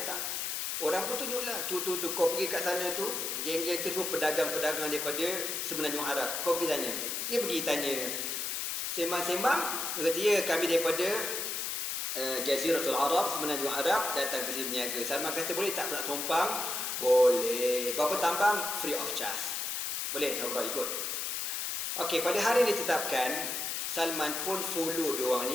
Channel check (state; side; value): noise; left; hiss, 2 dB below the sound